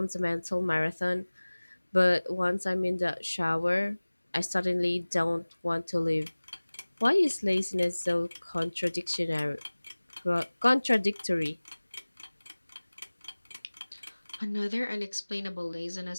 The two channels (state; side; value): inverted; both; correlation -1.00